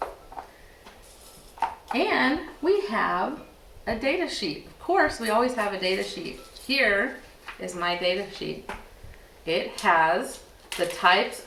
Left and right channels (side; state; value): both; identical; correlation 1.00